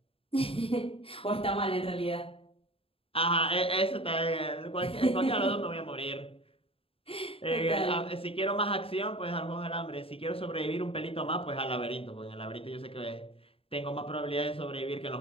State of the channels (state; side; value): late; right; 0.27 ms